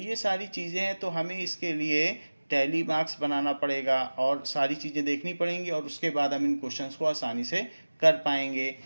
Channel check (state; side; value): inverted; both; correlation -1.00